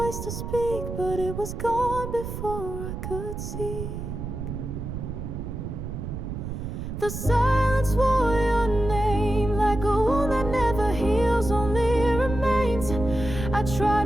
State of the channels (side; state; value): right; noise; rumble, 6 dB below the sound